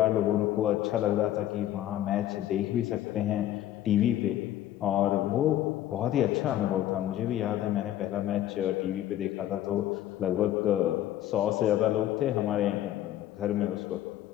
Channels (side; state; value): right; quieter; 12.8 dB